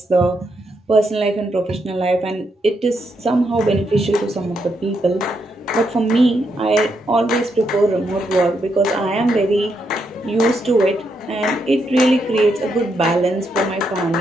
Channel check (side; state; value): both; normal; correlation 0.80